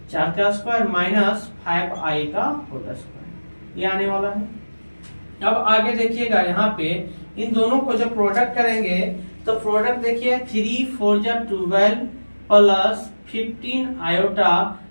स्क्वायर माइनस 5i का होल स्क्वायर, ये आने वाला है। अब आगे देखिएगा यहाँ पे इन दोनों को जब प्रोडक्ट करेंगे तो प्रोडक्ट देखिए 3 4 जा 12 प्लस 15 आयोटा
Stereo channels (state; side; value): inverted; both; correlation -1.00